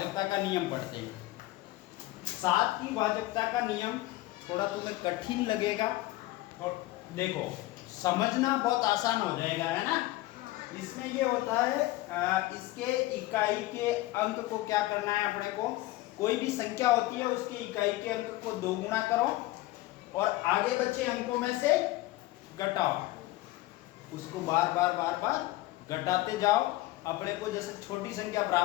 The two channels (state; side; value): quieter; right; 18.1 dB